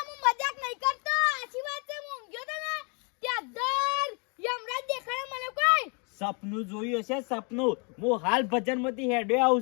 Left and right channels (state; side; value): quieter; right; 35.0 dB